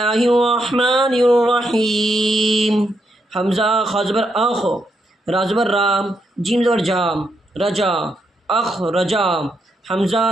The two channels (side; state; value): both; normal; correlation 0.80